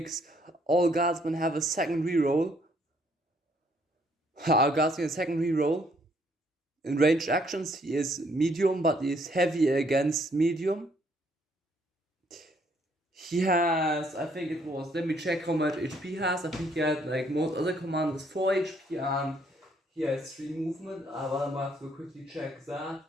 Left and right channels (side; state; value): both; normal; correlation 0.67